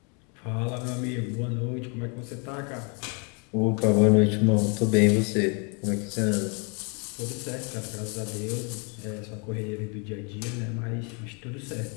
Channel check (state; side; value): quieter; right; 35.4 dB